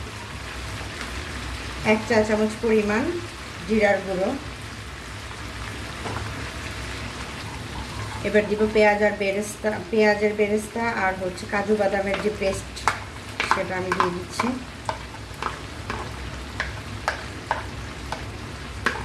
1 চা চামচ পরিমাণ জিরার গুঁড়ো। এবার দিব পেঁয়াজের বেরেস্তা আর হচ্ছে কাজু বাদামের যে পেস্ট সেটা আমি দিয়ে দিচ্ছি।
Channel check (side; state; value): both; identical; correlation 1.00